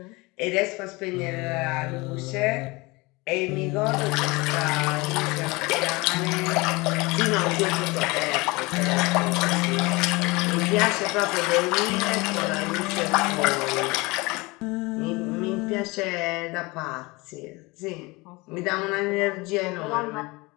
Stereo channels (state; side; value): quieter; right; 24.1 dB